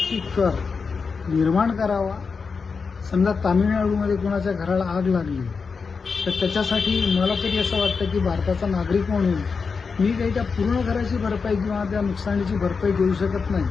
कर निर्माण करावा. समजा तामिळनाडूमध्ये कोणाच्या घराला आग लागली तर त्याच्यासाठी मला तरी असं वाटतं की भारताचा नागरिक म्हणून मी काही त्या पूर्ण घराची भरपाई किंवा त्या नुकसानीची भरपाई देऊ शकत नाही,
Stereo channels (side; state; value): right; quieter; 5.1 dB